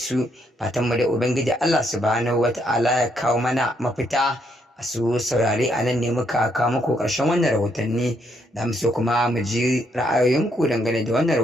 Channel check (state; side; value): normal; both; correlation 0.74